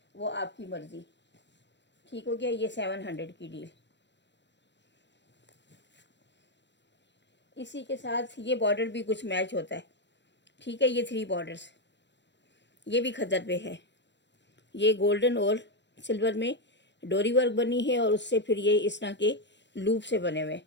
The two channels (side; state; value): right; late; 0.52 ms